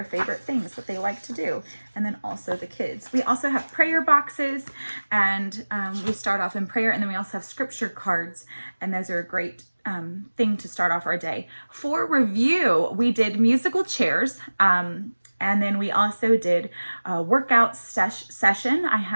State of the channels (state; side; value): inverted; both; correlation -1.00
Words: favorite things that they like to do, and then also the kids. We also have prayer boxes, and we start off in prayer, and then we also have scripture cards, and those are a great thing to start off our day. For review, we did musical chairs, and then we also did a workout session. I